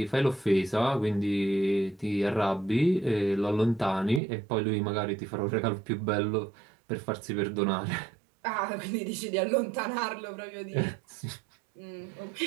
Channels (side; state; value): left; drops out; at 4.2 s